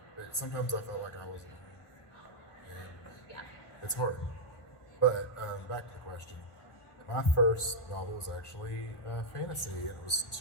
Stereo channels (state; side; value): late; right; 1.4 ms